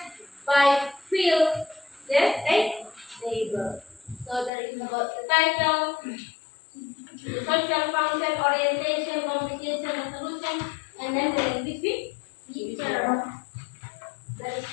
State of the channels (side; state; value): right; drops out; at 4.5 s